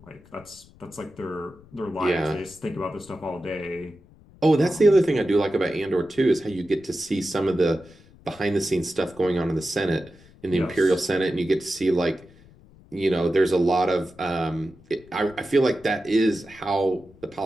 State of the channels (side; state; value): left; noise; rumble, 25 dB below the sound